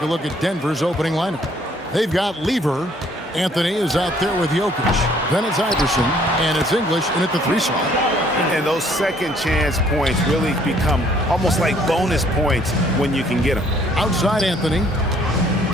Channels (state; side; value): normal; both; correlation 0.62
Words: a look at Denver's opening lineup. They've got Lever. Anthony is out there with Jokic. Then it's Iverson, and it's English in at the 3 slot. And those second chance points really become almost like bonus points when you can get them. Outside Anthony.